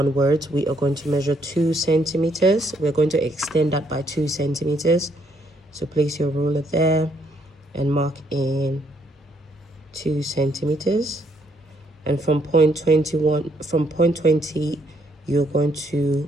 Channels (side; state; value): both; normal; correlation 0.71